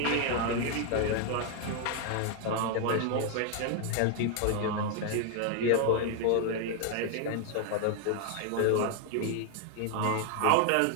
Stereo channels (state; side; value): different; both; correlation 0.00